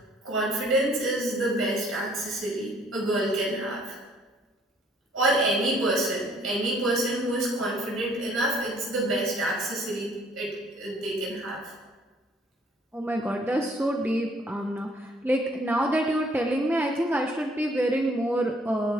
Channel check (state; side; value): normal; both; correlation 0.61